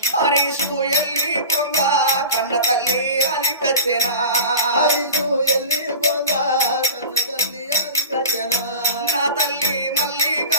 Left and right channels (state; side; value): inverted; both; correlation -0.33